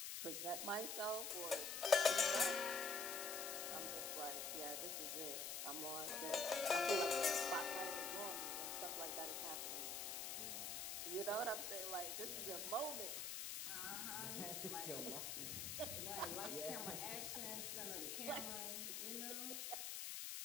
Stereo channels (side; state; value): left; noise; hiss, 3 dB below the sound